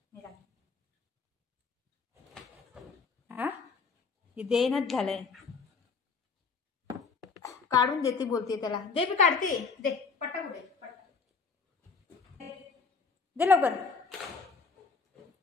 मी राहते. हा हे देणंच झालंय. काढून देते बोलते त्याला. दे मी काढते. दे पटाक दे पटाक. दे लवकर.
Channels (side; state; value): right; quieter; 4.8 dB